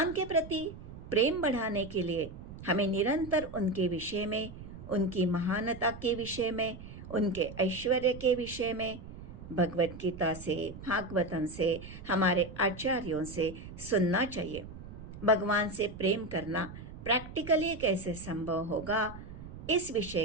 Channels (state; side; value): noise; right; rumble, 13 dB below the sound